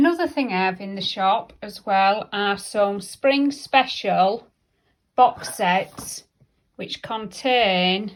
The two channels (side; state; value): both; identical; correlation 1.00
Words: thing I have in the shop as well are some spring special box sets which contain,